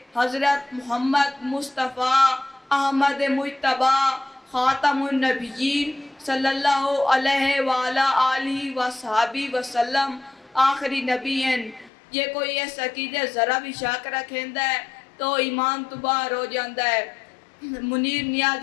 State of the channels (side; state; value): right; drops out; at 11.9 s